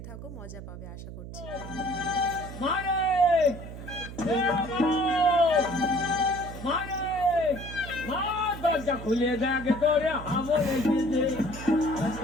থাকো, মজা পাবে আশা করছি। দরজা খুলে দেখে তোরে আমলে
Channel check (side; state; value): right; noise; hum, 11 dB below the sound